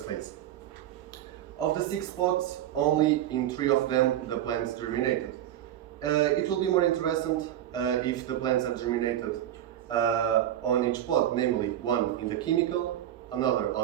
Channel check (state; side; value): quieter; left; 11.8 dB